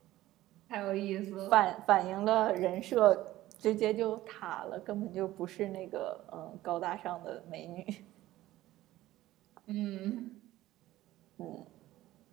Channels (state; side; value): quieter; left; 15.7 dB